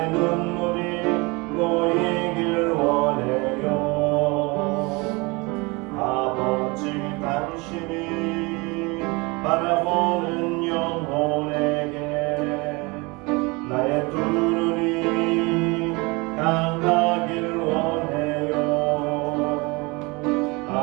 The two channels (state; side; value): quieter; left; 26.3 dB